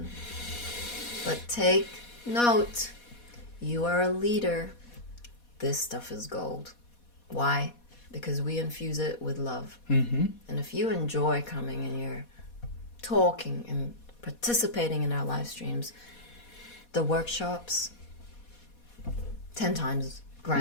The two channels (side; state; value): right; late; 4.2 ms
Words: But take note. You are a leader. This stuff is gold. Why? Because we infuse it with love. Mm-hmm. And if you enjoy coming and you're talking and participating in our live streams, the workshops, 10 times